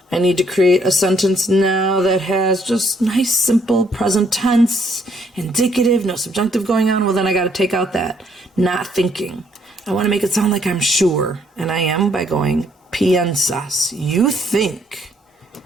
I need to create a sentence now that has just nice, simple present tense, indicative, no subjunctive going on. Well, then I got to take out that not thinking. I want to make it sound like I'm sure, and I am by going piensas. You think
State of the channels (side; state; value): both; normal; correlation 0.68